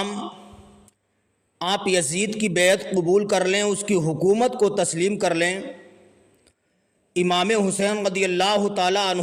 آپ یزید کی بیعت قبول کر لیں، اس کی حکومت کو تسلیم کر لیں۔ امام حسین رضی اللہ تعالیٰ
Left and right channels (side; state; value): both; identical; correlation 1.00